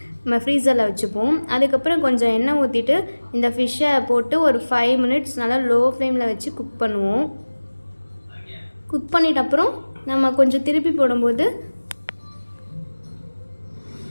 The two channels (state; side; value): inverted; both; correlation -1.00